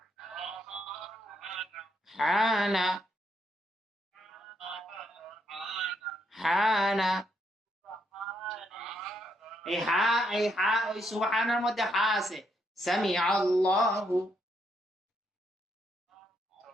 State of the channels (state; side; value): normal; both; correlation 0.76